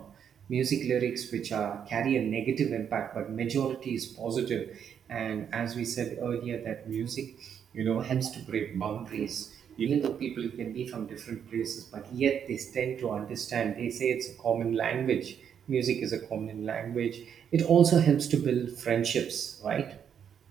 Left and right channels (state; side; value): quieter; left; 8.2 dB